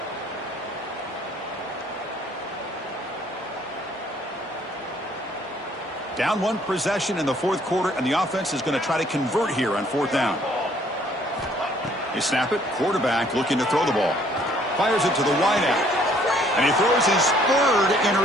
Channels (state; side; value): normal; both; correlation 0.62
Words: Down 1 possession in the 4th quarter, and the offense is going to try to convert here on 4th down. They snap it. Quarterback looking to throw the ball. Fires it to the wideout. And he throws his 3rd